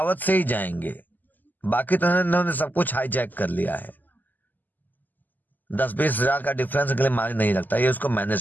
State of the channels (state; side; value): late; right; 0.085 ms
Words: से ही जाएंगे, बाकी तो इन्होंने सब कुछ हाईजैक कर लिया है। 10-20 हजार का डिफरेंस के लिए मायने नहीं रखता, ये उसको